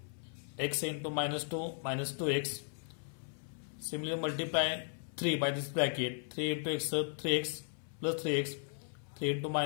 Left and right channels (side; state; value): right; silent; 54 dB below the other